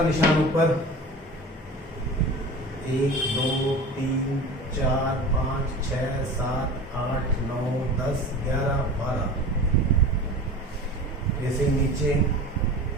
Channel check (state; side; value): normal; both; correlation 0.36